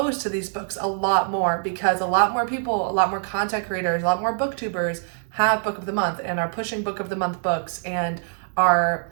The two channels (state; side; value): silent; left; 63 dB below the other